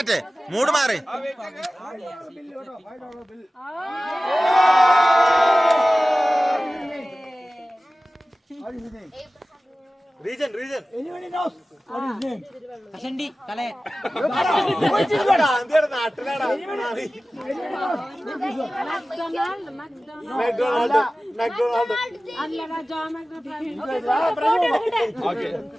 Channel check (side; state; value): both; normal; correlation 0.97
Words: മൂട് മാറി. റീജൻ റീജൻ നാട്ടിലാടാ